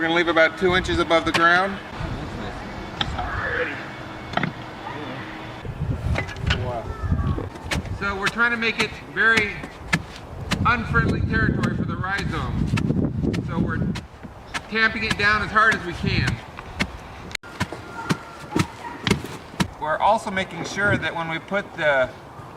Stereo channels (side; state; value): both; identical; correlation 1.00